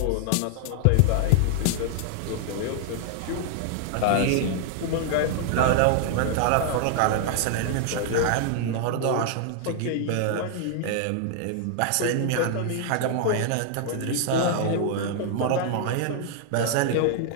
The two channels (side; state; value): both; different; correlation 0.00